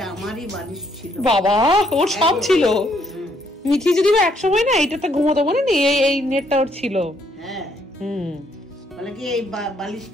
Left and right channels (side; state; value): both; normal; correlation 0.70